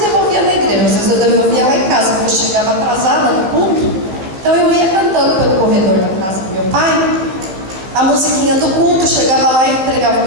na igreja, às vezes eu devolvia lá em casa, porque eu chegava atrasada no culto. Então eu ia cantando pelo corredor da casa do meu pai a musiquinha do culto, chegava lá e entregava o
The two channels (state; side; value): late; left; 16 ms